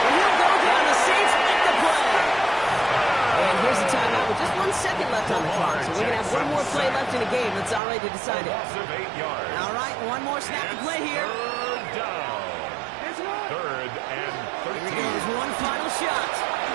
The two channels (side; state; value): left; drops out; at 7.8 s